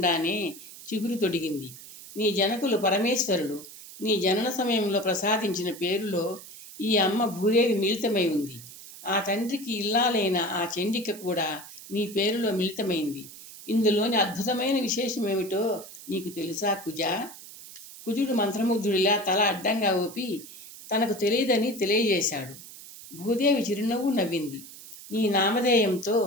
చిగురు తొడిగింది. నీ జనకులు పరమేశ్వరుడు నీ జనన సమయంలో ప్రసాదించిన పేరులో ఈ అమ్మ భూదేవి మిళితమై ఉంది. ఆ తండ్రికి ఇల్లాలైన ఆ చండిక కూడా నీ పేరులో మిళితమైంది. ఇందులోని అద్భుతమైన విశేషం ఏమిటో నీకు తెలుసా కుజా? కుజుడు మంత్రముగ్ధుడిలా తల అడ్డంగా ఊపి తనకు తెలియదని తెలియజేశాడు. భూదేవి చిరునవ్వు నవ్వింది. నీ నామధేయంతో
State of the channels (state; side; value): noise; right; hiss, 16 dB below the sound